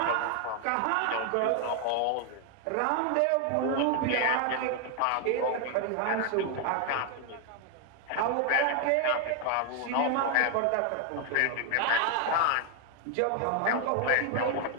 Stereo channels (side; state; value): both; different; correlation 0.01